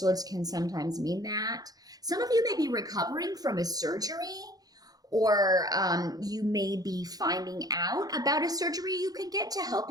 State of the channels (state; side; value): late; left; 0.18 ms